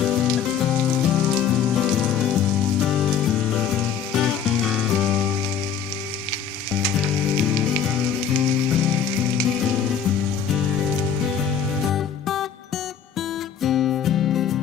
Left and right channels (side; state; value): right; quieter; 7.7 dB